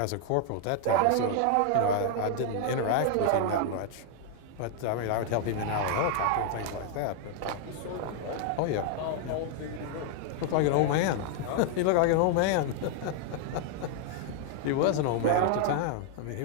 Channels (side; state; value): both; different; correlation 0.00